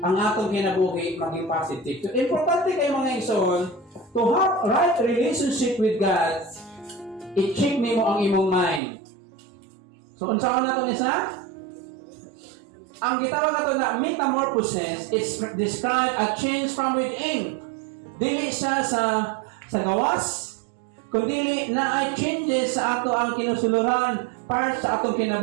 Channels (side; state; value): left; drops out; at 8.8 s